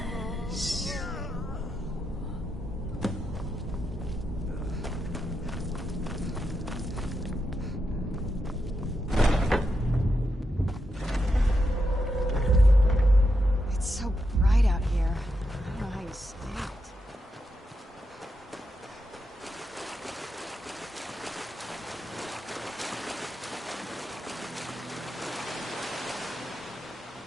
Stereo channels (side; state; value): both; normal; correlation 0.85